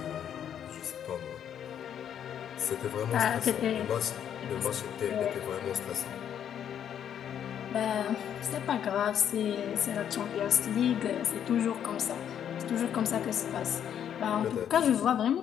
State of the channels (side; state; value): right; quieter; 9.3 dB